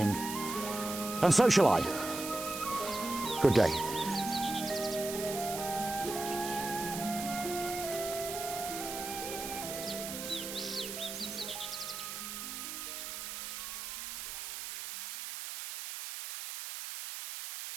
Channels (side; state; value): right; noise; hiss, 6 dB below the sound